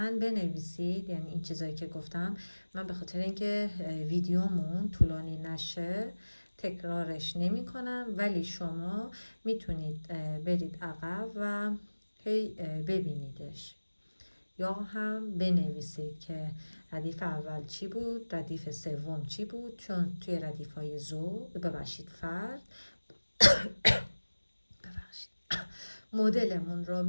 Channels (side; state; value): both; inverted; correlation -1.00